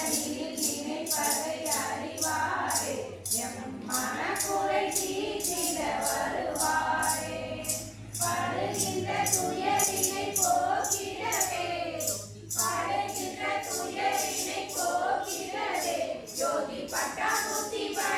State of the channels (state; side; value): identical; both; correlation 1.00